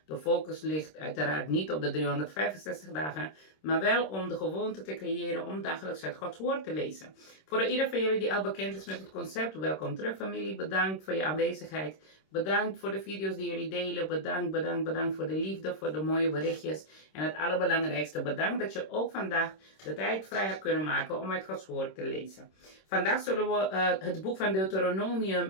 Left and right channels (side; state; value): right; late; 26 ms